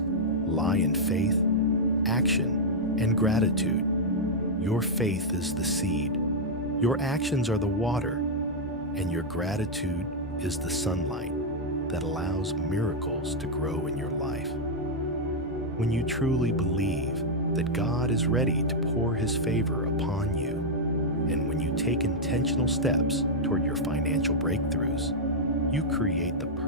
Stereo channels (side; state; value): left; noise; hum, 22 dB below the sound